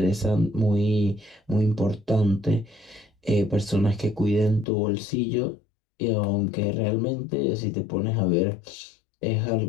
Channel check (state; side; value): drops out; right; at 4.7 s